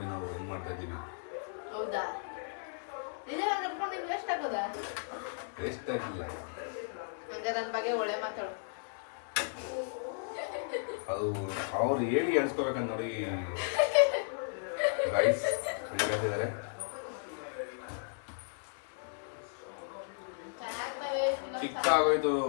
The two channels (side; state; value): right; silent; digital silence